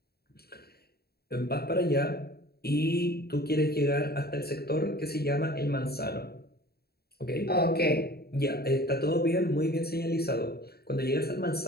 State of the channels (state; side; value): late; right; 0.46 ms